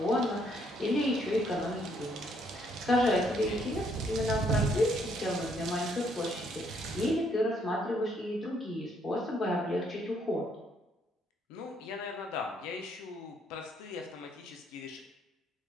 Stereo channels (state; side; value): normal; both; correlation 0.70